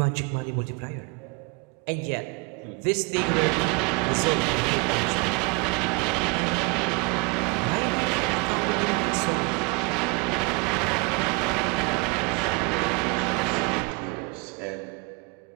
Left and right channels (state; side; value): quieter; left; 29.4 dB